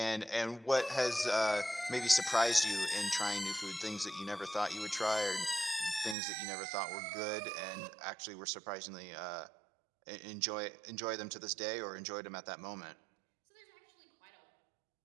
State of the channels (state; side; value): drops out; left; at 6.2 s